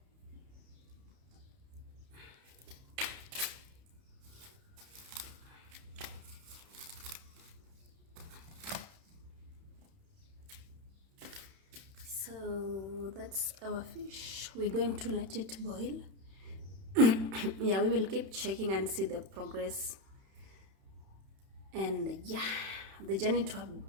So that's our fish. We're going to let it boil. Yeah, we will keep checking and see the progress. And yeah, the journey to a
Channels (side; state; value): left; late; 31 ms